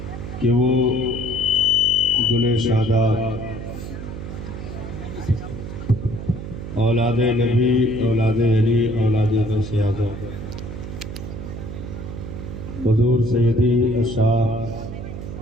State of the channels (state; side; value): noise; right; hum, 9 dB below the sound